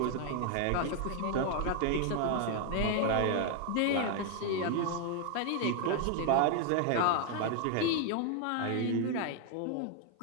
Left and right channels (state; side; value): different; both; correlation 0.00